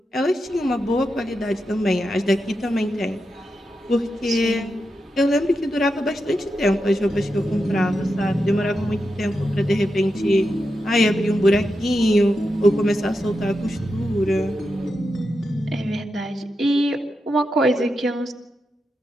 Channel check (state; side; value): normal; both; correlation 0.88